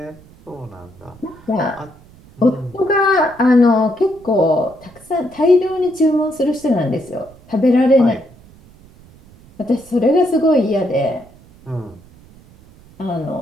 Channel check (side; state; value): right; noise; rumble, 25 dB below the sound